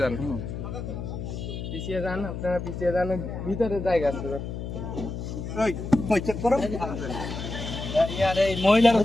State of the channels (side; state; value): left; noise; hum, 6 dB below the sound